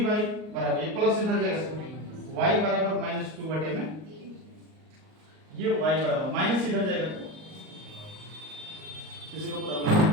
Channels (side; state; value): left; late; 38 ms